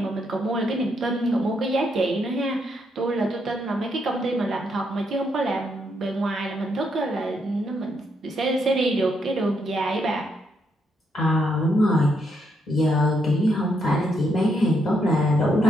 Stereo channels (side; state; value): both; normal; correlation 0.77